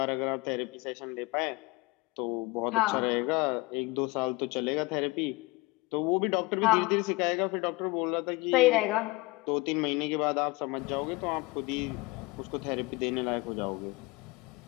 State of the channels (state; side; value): quieter; right; 23.3 dB